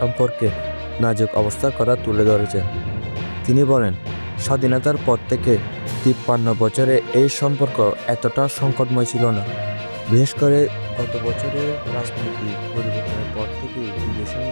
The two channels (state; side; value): inverted; both; correlation -1.00